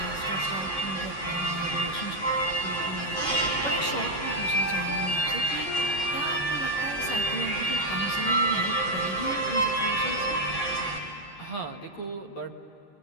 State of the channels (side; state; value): right; late; 11 ms